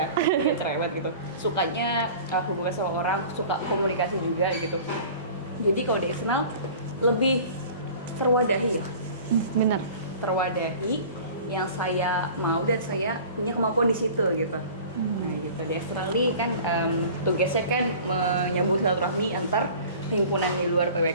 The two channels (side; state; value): both; inverted; correlation -0.43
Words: Agak cerewet gitu. Sukanya hubungan sama orang, suka komunikasi juga gitu. Jadi kalau di eksternal lebih terwadahi ya. Bener. Terwadahi yang saya mau dan saya punya kemampuan di situ gitu. Nah gitu, di eksternal nih kan tugasnya kan menyambung silaturahmi antar himpunan di luar